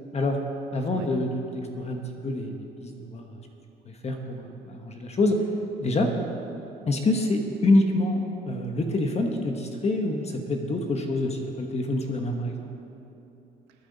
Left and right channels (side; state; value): both; normal; correlation 0.69